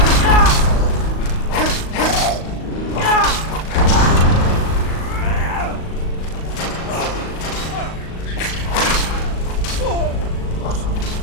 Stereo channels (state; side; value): late; right; 38 ms